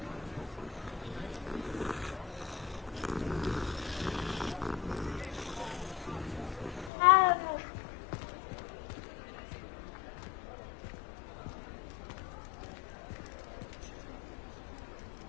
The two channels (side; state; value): right; drops out; at 6.9 s